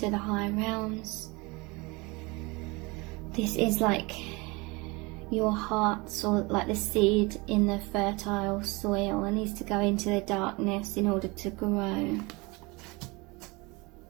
the high realms. This is like your heart, so like the seed in the fertile soil, and needs to go into the darkness in order to grow.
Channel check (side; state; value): left; quieter; 25.8 dB